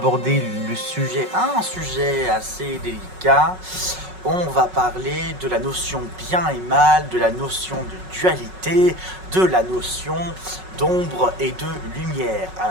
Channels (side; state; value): left; late; 5.4 ms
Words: un sujet assez délicat. On va parler de la notion bien et mal, de la notion de dualité, de la notion d'ombre et de lumière.